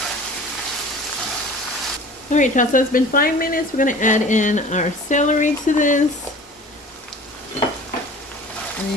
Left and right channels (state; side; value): normal; both; correlation 0.43